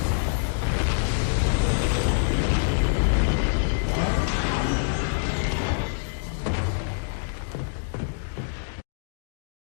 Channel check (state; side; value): silent; right; digital silence